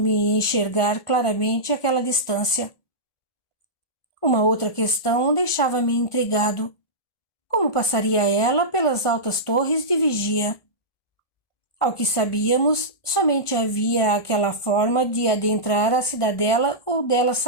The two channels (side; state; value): right; late; 1.4 ms